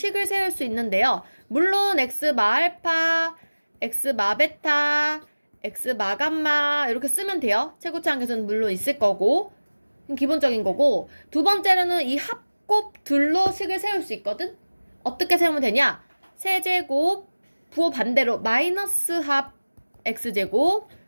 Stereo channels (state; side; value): inverted; both; correlation -1.00